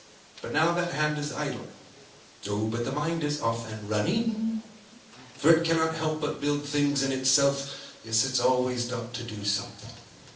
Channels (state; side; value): identical; both; correlation 1.00